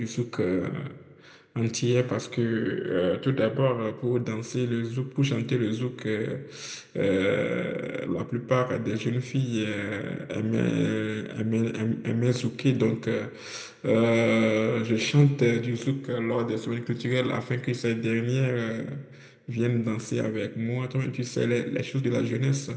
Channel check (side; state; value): both; identical; correlation 1.00